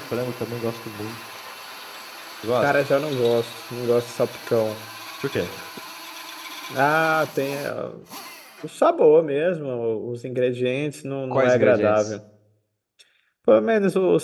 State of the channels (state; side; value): identical; both; correlation 1.00